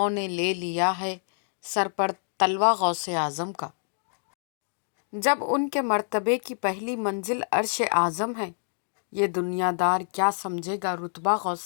نے لے لیا ہے سر پر تلوہ غوث اعظم کا۔ جب ان کے مرتبے کی پہلی منزل عرش اعظم ہے، یہ دنیا دار کیا سمجھے گا رتبہ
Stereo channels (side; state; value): right; silent; digital silence